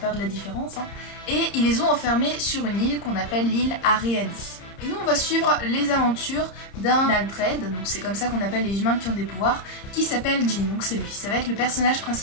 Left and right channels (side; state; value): right; late; 30 ms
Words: peur de la différence, et ils les ont enfermés sur une île qu'on appelle l'île Areadi. Et nous on va suivre les aventures d'un Aldred, donc c'est comme ça qu'on appelle les humains qui ont des pouvoirs, qui s'appelle Jin, donc c'est lui, ça va être le personnage